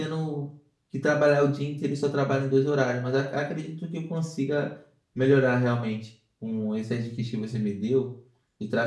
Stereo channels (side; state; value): both; identical; correlation 1.00